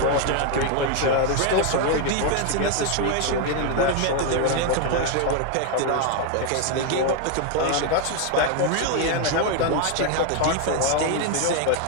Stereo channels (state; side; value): different; both; correlation 0.01